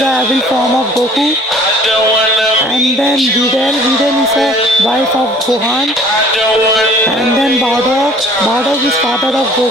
a evil form of Goku. And then Videl is a wife of Gohan. And then Bardock is father of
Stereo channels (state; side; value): normal; both; correlation 0.52